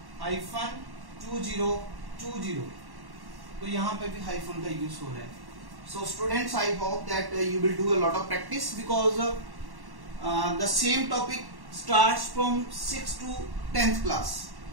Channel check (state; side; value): late; left; 1.1 ms